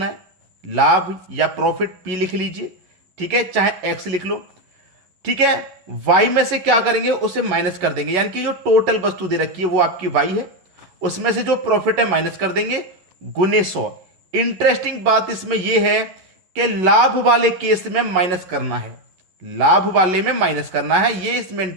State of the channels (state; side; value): late; left; 11 ms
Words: है। लाभ या प्रॉफिट पी लिख लीजिए, ठीक है, चाहे एक्स लिख लो। ठीक है, वाई में से क्या करेंगे, उसे माइनस कर देंगे, यानी कि जो टोटल वस्तु दे रखी है वो आपकी वाई है, उसमें से जो प्रॉफिट है माइनस कर देंगे, गुने 100। इंटरेस्टिंग बात इसमें यह है कि लाभ वाले केस में माइनस करना है, लाभ वाले में माइनस करना है, ये इसमें